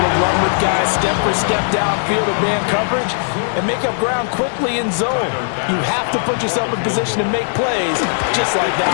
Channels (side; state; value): right; silent; digital silence